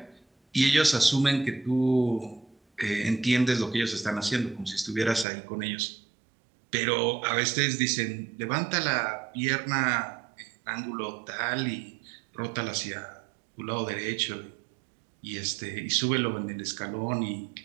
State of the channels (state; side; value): drops out; left; at 5.2 s